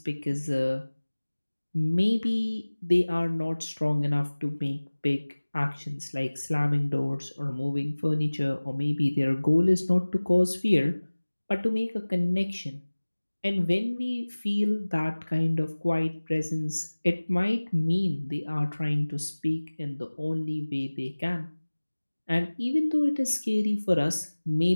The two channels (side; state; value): both; inverted; correlation -1.00